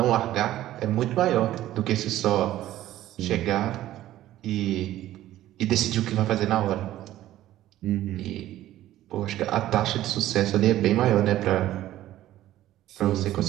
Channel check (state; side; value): quieter; left; 14.0 dB